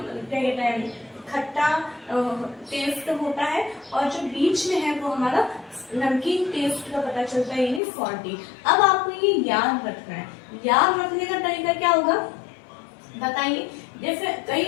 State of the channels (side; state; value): right; drops out; at 7.8 s